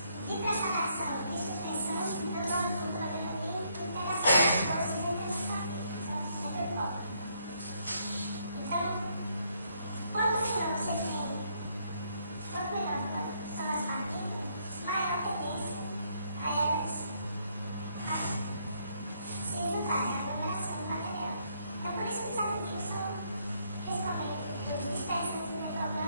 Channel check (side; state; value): both; inverted; correlation -0.72